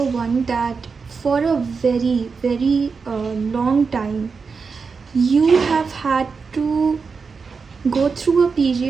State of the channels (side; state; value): left; quieter; 5.1 dB